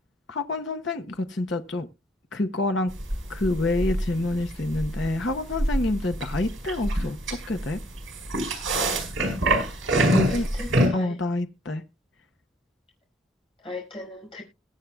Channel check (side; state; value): both; normal; correlation 0.63